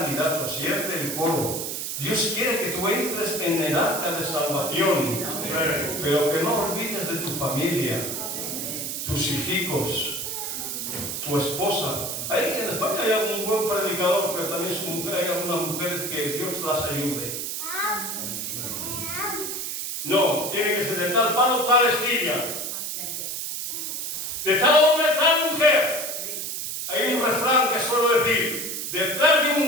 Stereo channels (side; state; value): right; noise; hiss, 4 dB below the sound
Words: si eres del coro, Dios quiere que tú entres en el arca de salvación. Pero que no olvides de tu familia, tus hijos, tu esposa. Ahí en España hay algún buen predicador, pero también hay algunas mujeres que Dios las ayude. No, tiene que ser de tal palo, tal astilla. De tal hombre, tal mujer. Hay un refrán que suelo decir: detrás de